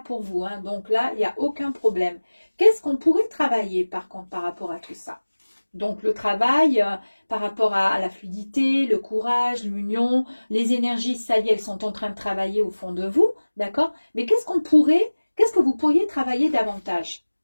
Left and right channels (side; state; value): both; inverted; correlation -1.00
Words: pour vous. Hein. Donc là, il n'y a aucun problème. Qu'est-ce qu'on pourrait travailler par contre par rapport à tout ça? Donc le travail par rapport à la fluidité, le courage, l'union, les énergies, ça y est, elles sont en train de travailler au fond de vous, d'accord? Mais qu'est-ce que vous pourriez travailler davantage?